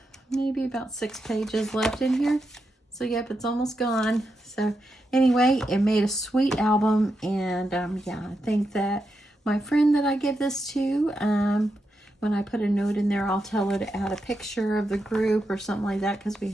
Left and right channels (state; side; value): normal; both; correlation 0.86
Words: maybe about 6 pages left in here. So yep, it's almost gone. So anyway, it made a sweet album, and yeah, I think that my friend that I give this to, when I put a note in there, I'll tell her to add a picture of the group or something like that, because we